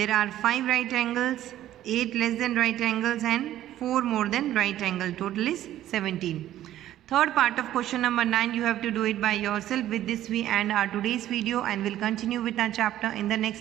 are 5 right angles, 8 less than right angles and 4 more than right angle. Total is 17. Third part of question number 9, you have to do it by yourself. With this we end our today's video and will continue with our chapter in the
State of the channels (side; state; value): left; quieter; 12.9 dB